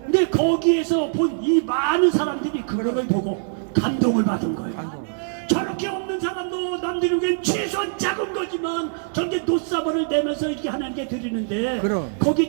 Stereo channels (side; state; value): left; silent; digital silence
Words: 근데 거기에서 본 이 많은 사람들이 그걸 보고 감동을 받은 거예요. 저렇게 없는 사람도 남들이 보기엔 최소한 작은 거지만 저렇게 노사발을 내면서 이렇게 하나님께 드리는데 거기